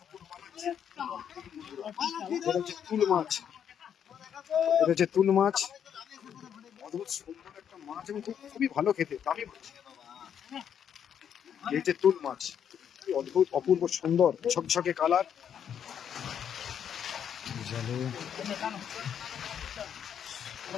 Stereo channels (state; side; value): quieter; right; 8.6 dB